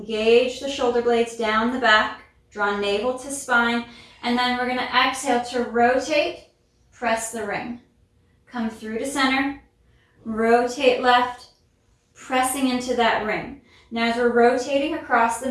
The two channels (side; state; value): both; identical; correlation 1.00